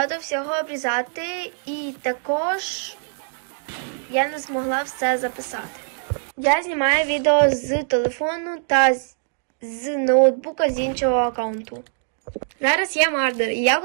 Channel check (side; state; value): left; silent; digital silence